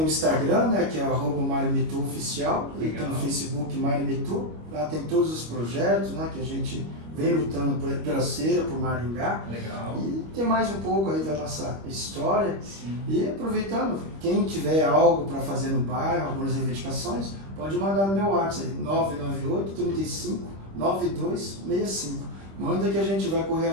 o Instagram, né, que é @MarioMitu_oficial, e tem o Facebook Mário Mitu. Lá tem todos os projetos, né, que a gente vem lutando pela cera, por Maringá. Legal. E tem mais um pouco aí da nossa história. Sim. E aproveitando, quem tiver algo para fazer no bairro, algumas reivindicações, pode mandar no meu WhatsApp, 998 35 9265. Manda que a gente vai correr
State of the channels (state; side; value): late; left; 25 ms